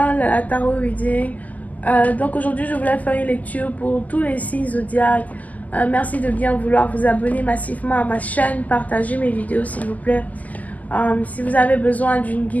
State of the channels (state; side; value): late; right; 0.078 ms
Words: la Tarot Reading. Donc aujourd'hui je voulais faire une lecture pour tous les signes zodiaques. Merci de bien vouloir vous abonner massivement à ma chaîne, partager mes vidéos s'il vous plaît. Si vous avez besoin d'une